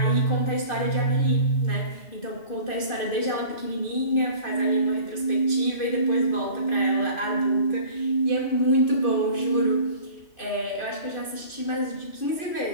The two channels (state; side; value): late; right; 2.5 ms